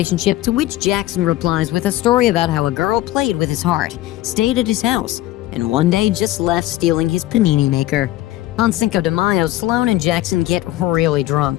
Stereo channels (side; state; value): right; quieter; 15.5 dB